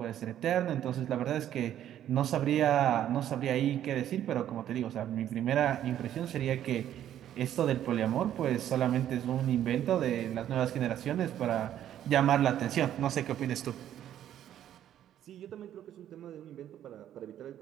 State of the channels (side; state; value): left; quieter; 11.1 dB